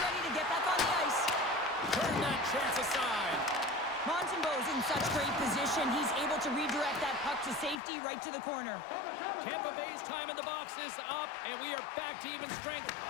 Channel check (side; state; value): right; drops out; at 7.8 s